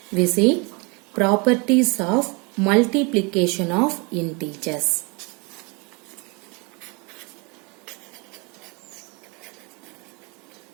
we see properties of multiplication of integers.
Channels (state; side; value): quieter; left; 29.8 dB